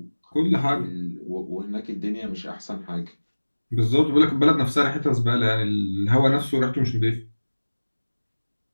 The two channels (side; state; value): both; inverted; correlation -1.00